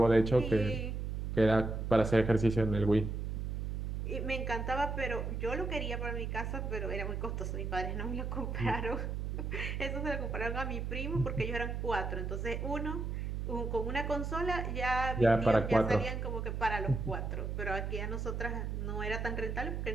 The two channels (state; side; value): noise; right; hum, 3 dB below the sound